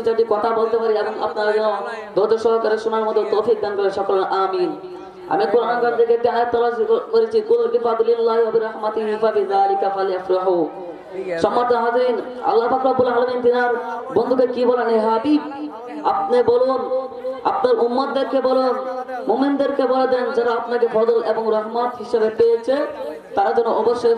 চারটি কথা বলতে পারি এবং আপনারা যেন ধৈর্য সহকারে শোনার মতো তৌফিক দান করে সকলে আমিন। আমি কোরআন কারীম থেকে একটি আয়াত তেলাওয়াত করেছি, কুল বিফাদলিল্লাহি ওয়া বিরহমাতিহি ফাবিযালিকা ফালইফরাহু। সম্মানিত হাজিরিন, আল্লাহ পাক রব্বুল আলামিন তিনার বন্ধুকে কি বলেন, হে হাবিব আপনি বলুন, আপনার উম্মতদেরকে বলুন, মুমিনদেরকে বলে দেন যারা আপনাকে ফজল এবং রহমত হিসেবে পেয়েছে তারা যেন অবশ্যই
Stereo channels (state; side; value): identical; both; correlation 1.00